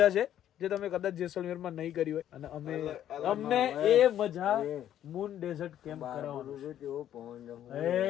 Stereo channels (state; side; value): quieter; right; 11.1 dB